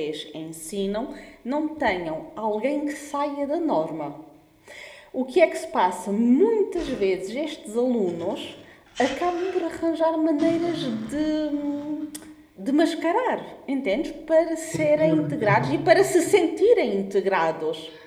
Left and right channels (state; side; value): identical; both; correlation 1.00